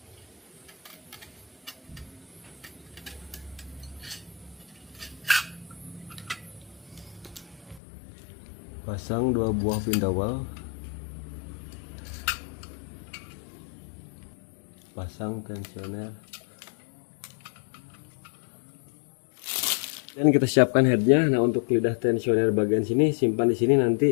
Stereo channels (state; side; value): drops out; right; at 7.8 s